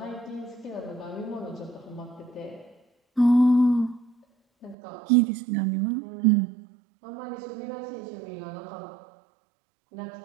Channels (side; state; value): left; drops out; at 4.8 s